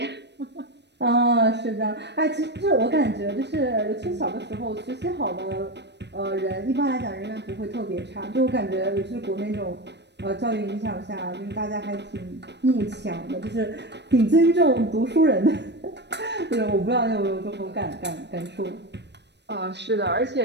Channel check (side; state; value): left; late; 0.50 ms